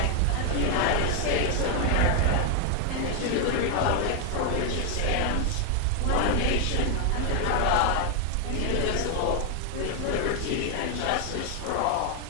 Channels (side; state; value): both; different; correlation 0.00